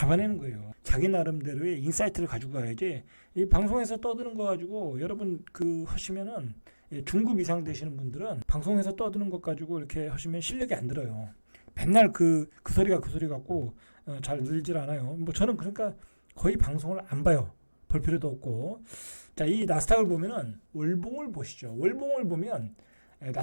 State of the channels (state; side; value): inverted; both; correlation -1.00